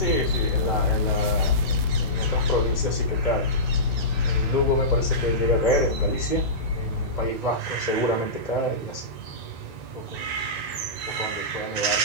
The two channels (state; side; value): normal; both; correlation -0.20